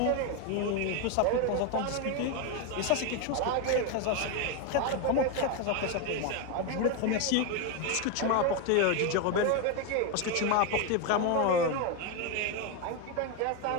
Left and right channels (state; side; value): different; both; correlation 0.02